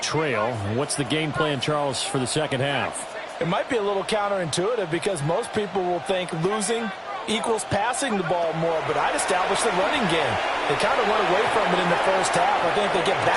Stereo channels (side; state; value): both; identical; correlation 1.00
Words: What's the game plan, Charles, for the second half? It might be a little counterintuitive because most people will think losing equals passing the ball more, but I'd establish the running game. They kind of went away from it in the first half. I think they get